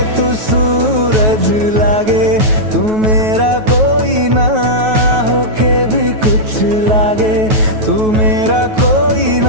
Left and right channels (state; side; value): late; left; 9.3 ms